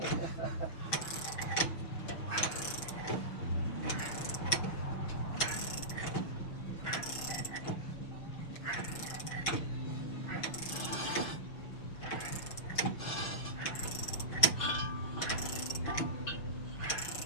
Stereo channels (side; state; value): right; late; 6.2 ms